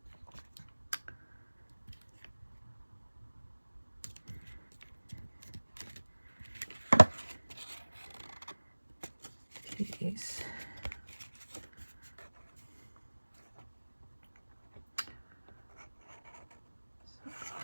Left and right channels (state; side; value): inverted; both; correlation -1.00